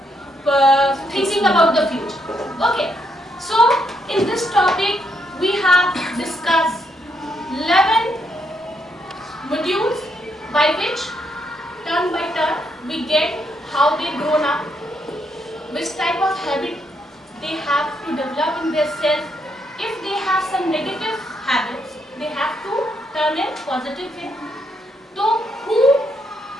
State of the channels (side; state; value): both; normal; correlation 0.77